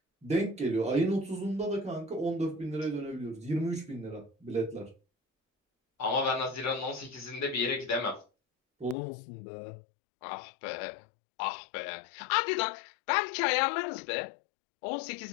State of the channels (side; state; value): right; drops out; at 9.0 s